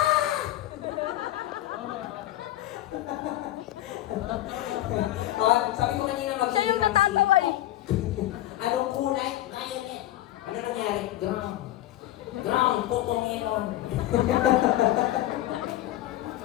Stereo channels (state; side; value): quieter; right; 14.4 dB